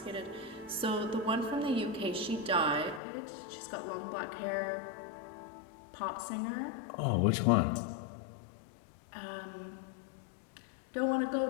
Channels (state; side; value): drops out; right; at 3.0 s